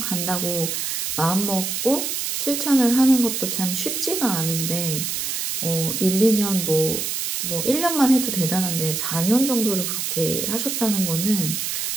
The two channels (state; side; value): noise; right; hiss, 2 dB below the sound